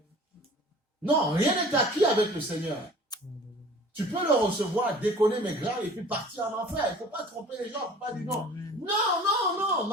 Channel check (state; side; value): normal; both; correlation 0.47